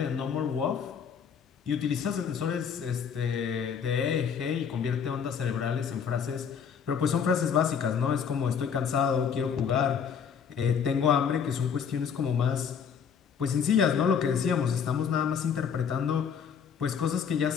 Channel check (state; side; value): quieter; right; 7.1 dB